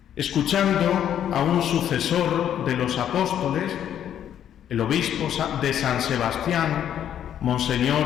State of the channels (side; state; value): right; quieter; 10.1 dB